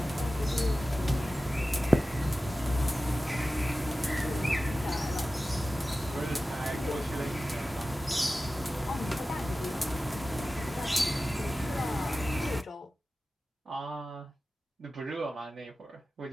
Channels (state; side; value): normal; both; correlation 0.95